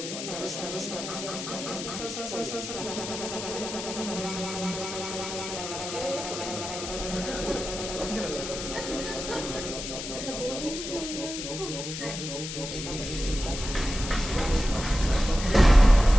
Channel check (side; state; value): left; noise; hiss, 7 dB below the sound